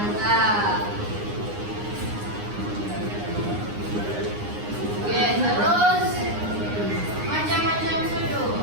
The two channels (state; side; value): late; left; 9.7 ms